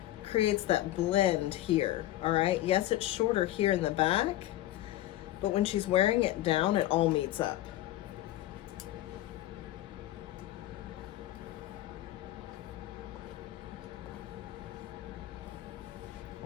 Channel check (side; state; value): right; quieter; 14.8 dB